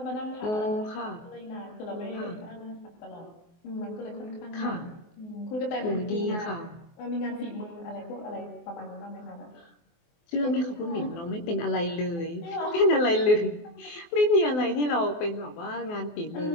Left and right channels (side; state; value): right; late; 24 ms